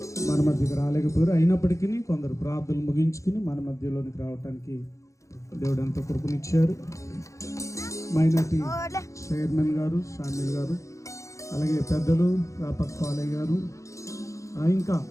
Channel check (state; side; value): late; right; 0.15 ms